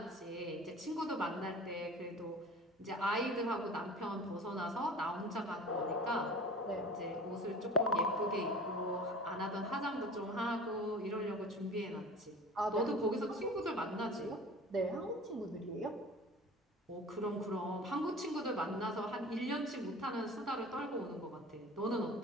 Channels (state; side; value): normal; both; correlation 0.40